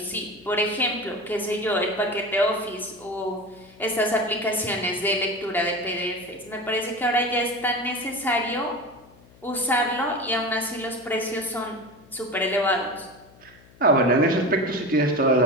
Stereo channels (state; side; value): noise; left; hum, 26 dB below the sound